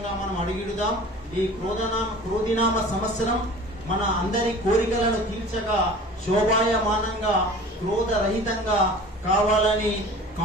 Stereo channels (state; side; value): normal; both; correlation 0.42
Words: మనం అడుగిడుదాం. ఈ క్రోధినామ సంవత్సరం మన అందరి కోరికలను తీర్చగా శోభాయమానంగా క్రోధరహితంగా కావాలని